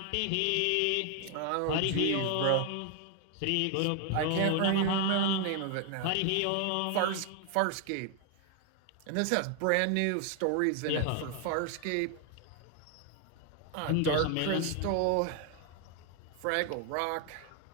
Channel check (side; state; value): both; different; correlation 0.00